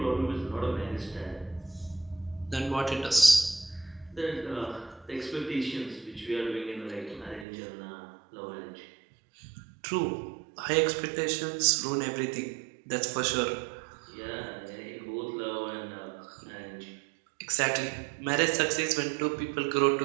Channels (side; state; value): left; drops out; at 7.5 s